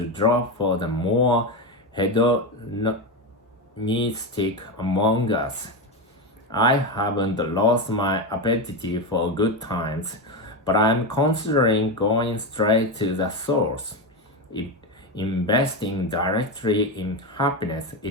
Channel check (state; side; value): normal; both; correlation 0.14